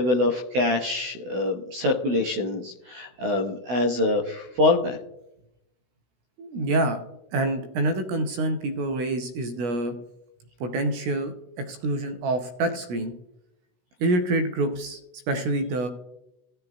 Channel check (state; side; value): late; left; 16 ms